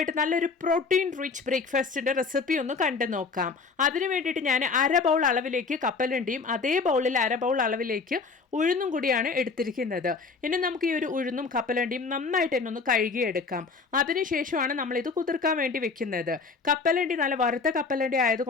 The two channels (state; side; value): quieter; right; 4.6 dB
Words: നല്ലൊരു പ്രോട്ടീൻ റിച്ച് ബ്രേക്ക്ഫാസ്റ്റിൻ്റെ റെസിപ്പി ഒന്ന് കണ്ടു നോക്കാം. അതിന് വേണ്ടിയിട്ട് ഞാൻ 1/2 ബൗൾ അളവിലേക്ക് കപ്പലണ്ടിയും അതേ ബൗളിൽ 1/2 ബൗൾ അളവിലേക്ക് ഉഴുന്നും കൂടിയാണ് എടുത്തിരിക്കുന്നത്. ഇനി നമുക്ക് ഈ ഒരു ഉഴുന്നും കപ്പലണ്ടിയും നന്നായിട്ട് തന്നെ ഒന്ന് കഴുകിയെടുക്കാം. അതിനുശേഷമാണ് നമ്മളിത് കുതിർക്കാൻ വേണ്ടി വെക്കുന്നത്. കപ്പലണ്ടി നല്ല വറുത്ത കപ്പലണ്ടി